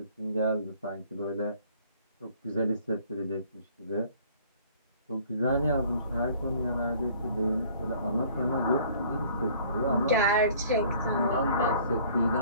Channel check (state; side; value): inverted; both; correlation -0.54